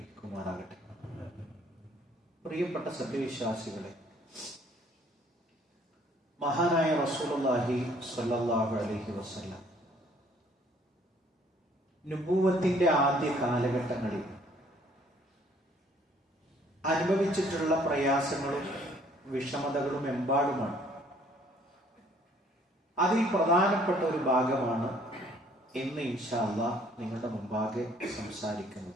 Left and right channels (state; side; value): normal; both; correlation 0.60